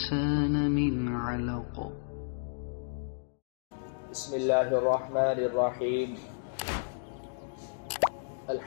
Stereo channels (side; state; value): right; silent; digital silence